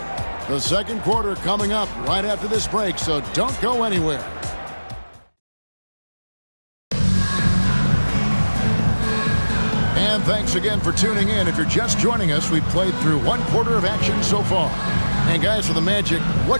The second quarter coming up right after this break, so don't go anywhere. And thanks again for tuning in. If you're just joining us, we've played through 1 quarter of action so far. And guys, for the Magic,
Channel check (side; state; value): both; inverted; correlation -1.00